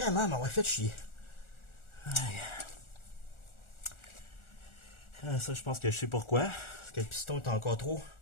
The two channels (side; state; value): right; late; 1.4 ms